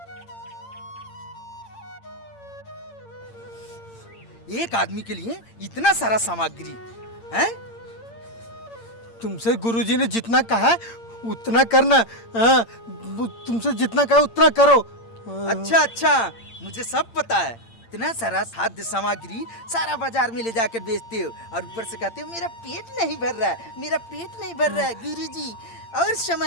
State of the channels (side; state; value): right; late; 8.8 ms